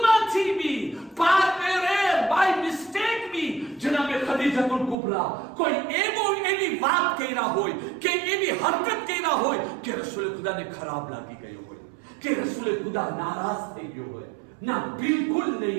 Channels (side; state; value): left; drops out; at 5.0 s